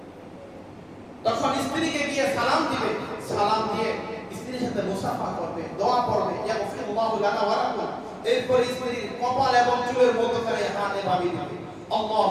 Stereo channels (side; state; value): both; identical; correlation 1.00